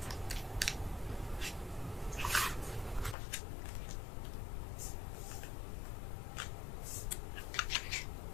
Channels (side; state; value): right; drops out; at 3.2 s